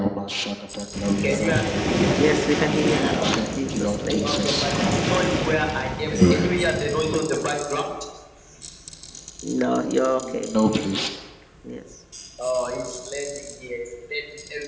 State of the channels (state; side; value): identical; both; correlation 1.00